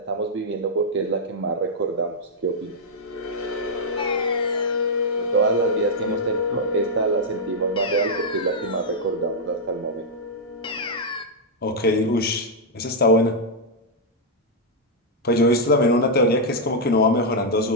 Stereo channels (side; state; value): both; normal; correlation -0.05